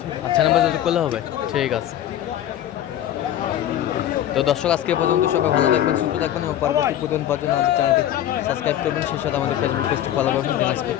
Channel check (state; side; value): quieter; right; 11.7 dB